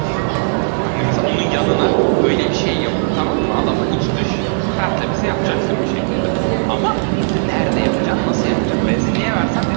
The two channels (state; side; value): silent; left; digital silence